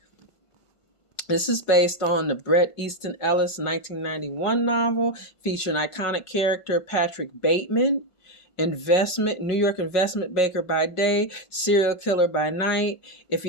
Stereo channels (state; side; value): late; right; 1.5 ms